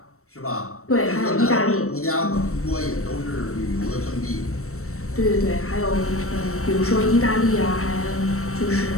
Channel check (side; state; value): right; late; 0.63 ms